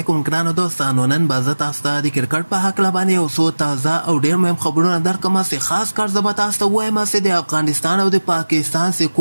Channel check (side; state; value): both; inverted; correlation -1.00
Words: ګرانو دوستانو. نن به زه تاسو ته د کرکټ په هکله باندې یو څو تازه او ډېر مهم خبرونه درکړم چې خاص کار زه به تاسو ته ووایم چې د افغانستان او د پاکستان چې